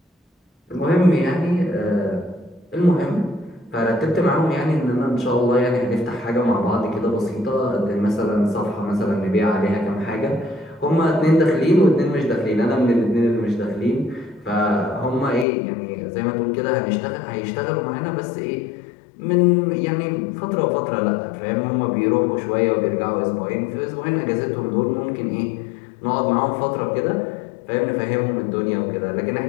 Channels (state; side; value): drops out; right; at 15.5 s